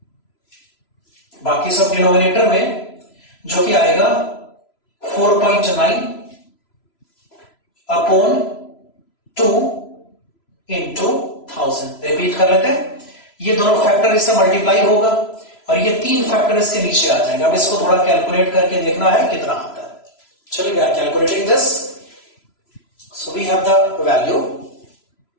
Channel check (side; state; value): right; late; 3.0 ms